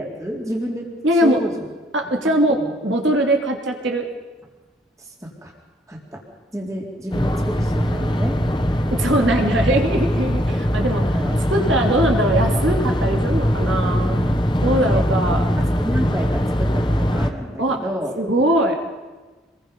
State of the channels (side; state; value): both; normal; correlation 0.69